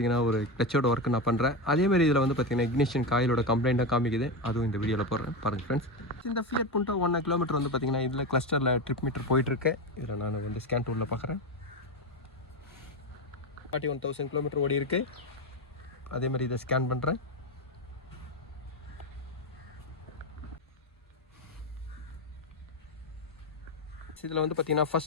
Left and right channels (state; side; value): normal; both; correlation 0.15